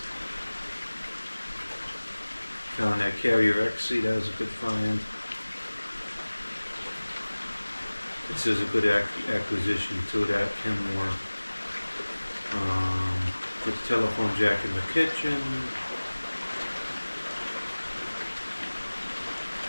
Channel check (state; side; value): inverted; both; correlation -1.00